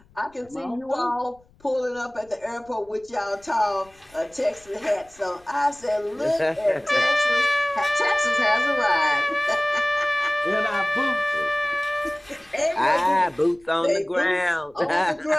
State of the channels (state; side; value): noise; left; rumble, 30 dB below the sound